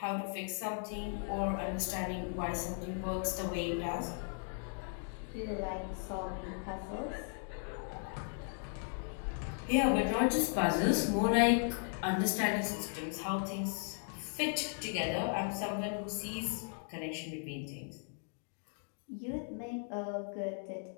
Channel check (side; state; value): right; silent; 53 dB below the other